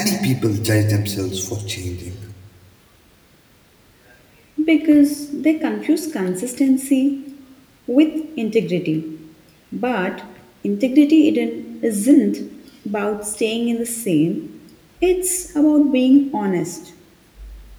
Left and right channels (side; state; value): both; identical; correlation 1.00